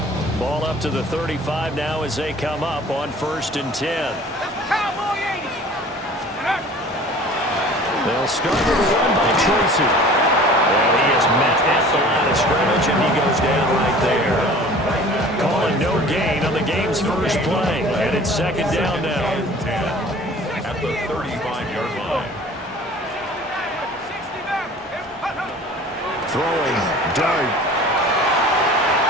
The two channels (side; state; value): both; normal; correlation 0.46